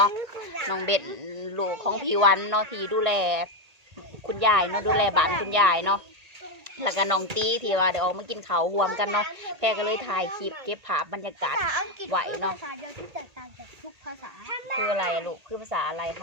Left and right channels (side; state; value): left; late; 1.8 ms